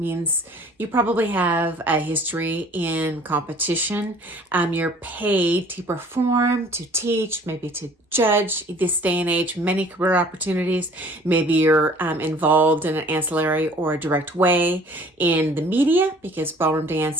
you probably have a history in competition. You're paid to perform, to teach, maybe to judge. This day and age, many career opportunities. Maybe you're involved in an ancillary or a direct way in the media, because ballroom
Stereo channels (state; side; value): normal; both; correlation 0.52